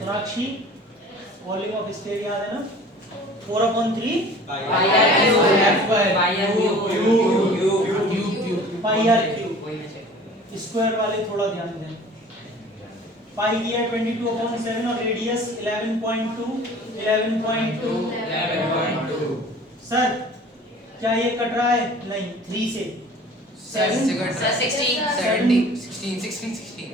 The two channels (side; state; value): both; normal; correlation 0.46